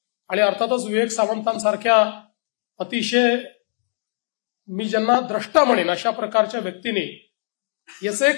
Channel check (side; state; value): right; silent; digital silence